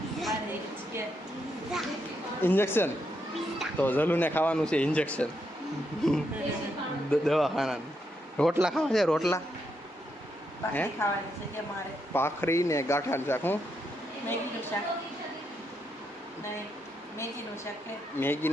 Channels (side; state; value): both; normal; correlation 0.80